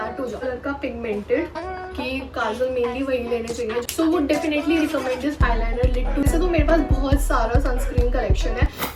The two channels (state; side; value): identical; both; correlation 1.00